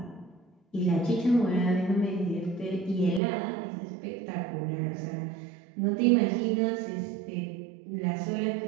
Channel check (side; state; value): left; drops out; at 3.2 s